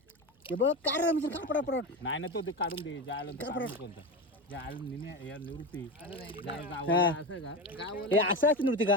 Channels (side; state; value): both; normal; correlation 0.21